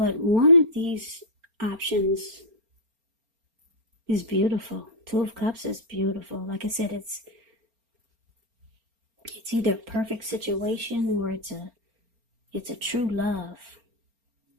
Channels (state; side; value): late; left; 4.4 ms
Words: one of these options is beautiful. Two of Cups is beautiful. Like I said, it's either a perfect situation or it's a true love.